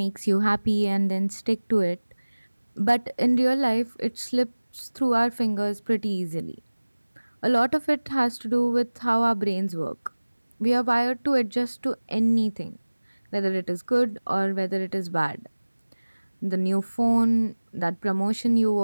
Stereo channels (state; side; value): inverted; both; correlation -1.00